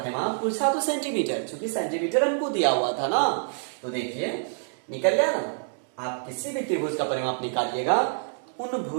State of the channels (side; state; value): left; silent; digital silence